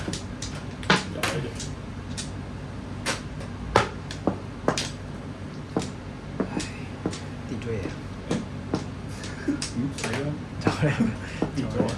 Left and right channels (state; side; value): identical; both; correlation 1.00